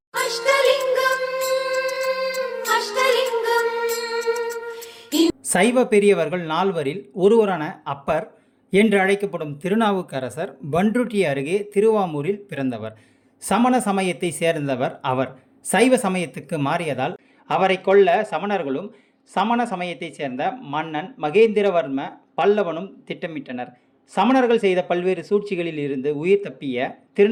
சைவ பெரியவர்கள் 4வரில் ஒருவரான அப்பர் என்று அழைக்கப்படும் திருநாவுக்கரசர் பண்ருட்டி அருகே திருவாமூரில் பிறந்தவர். சமண சமயத்தை சேர்ந்தவர் அவர். சைவ சமயத்துக்கு மாறியதால் அவரை கொல்ல சமணர்களும் சமண சமயத்தை சேர்ந்த மன்னன் மகேந்திரவர்ம பல்லவனும் திட்டமிட்டனர். சமணர்கள் செய்த பல்வேறு சூழ்ச்சிகளில் இருந்து உயிர் தப்பிய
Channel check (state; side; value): identical; both; correlation 1.00